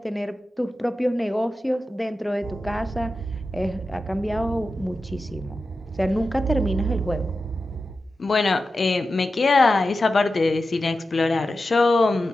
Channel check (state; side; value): normal; both; correlation 0.92